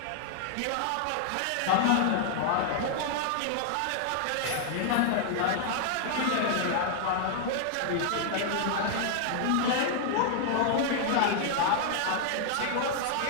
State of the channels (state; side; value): different; both; correlation 0.00